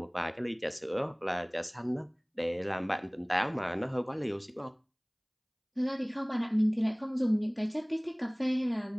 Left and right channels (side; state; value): both; identical; correlation 1.00